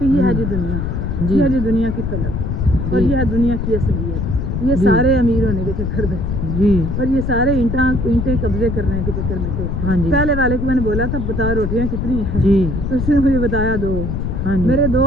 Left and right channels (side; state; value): left; noise; rumble, 2 dB below the sound